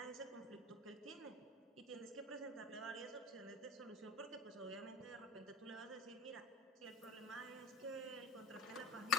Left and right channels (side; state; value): both; normal; correlation 0.36